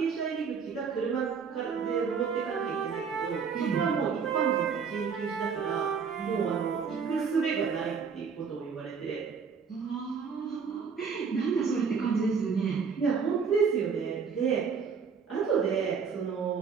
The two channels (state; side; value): quieter; left; 6.0 dB